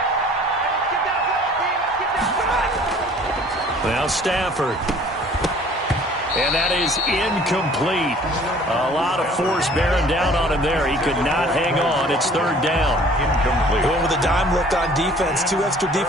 Now Stafford. And that is incomplete. A lot of force bearing down on him there. He could not hang on. It's third down. Incomplete. Going with a dime look on defense. 2 extra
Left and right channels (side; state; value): both; normal; correlation 0.52